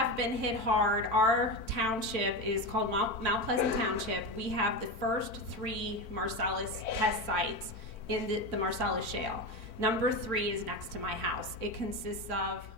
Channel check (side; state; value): right; late; 4.5 ms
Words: been hit hard. Our township is called Mount Pleasant Township. We have the first 3 Marcellus test sites in the Marcellus Shale. Number 3 is next to my house. It consists of